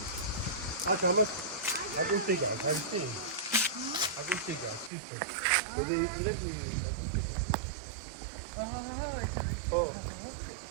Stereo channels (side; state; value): left; drops out; at 4.9 s